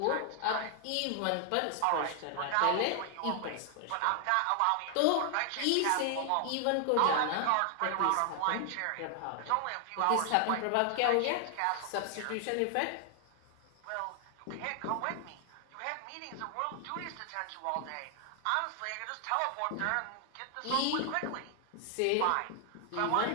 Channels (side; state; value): both; different; correlation 0.00